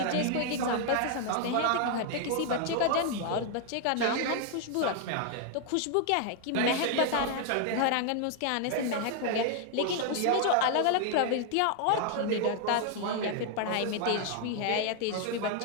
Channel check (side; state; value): both; different; correlation 0.00